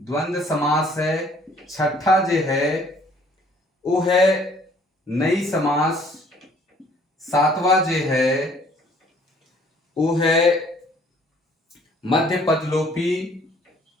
समास है, छठा जो है वो है नई समास, सातवां जो है वो है मध्य पद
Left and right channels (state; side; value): normal; both; correlation 0.59